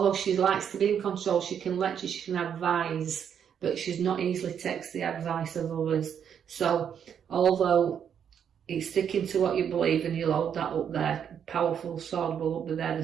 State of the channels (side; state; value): left; quieter; 8.2 dB